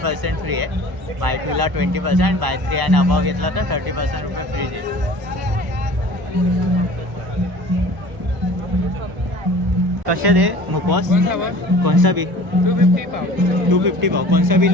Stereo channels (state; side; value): late; left; 1.0 ms